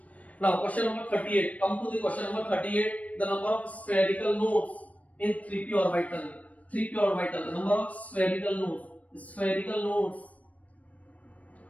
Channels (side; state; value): right; late; 0.068 ms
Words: Now question number 38, come to the question number 38, the number of spherical nodes in 3p orbital, 3p orbital, the number of spherical nodes,